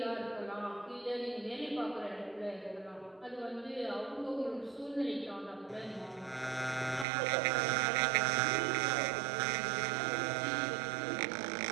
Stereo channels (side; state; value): left; drops out; at 7.1 s